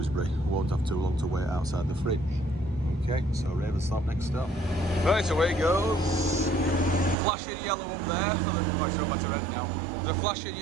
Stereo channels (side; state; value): left; drops out; at 7.2 s